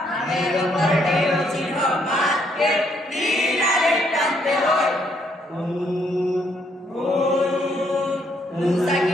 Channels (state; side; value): normal; both; correlation 0.71